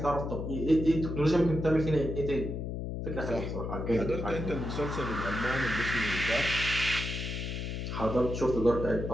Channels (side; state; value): left; noise; hum, 4 dB below the sound